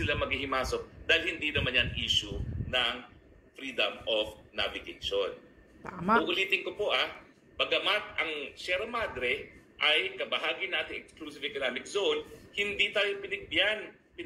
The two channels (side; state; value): both; identical; correlation 1.00